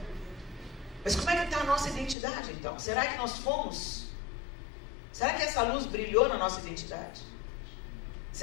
Mas como é que está a nossa identidade então? Será que nós fomos? Será que essa luz brilhou na nossa identidade?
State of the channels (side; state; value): right; drops out; at 2.1 s